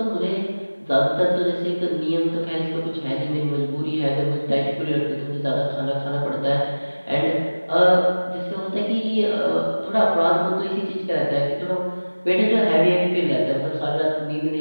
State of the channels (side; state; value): both; inverted; correlation -1.00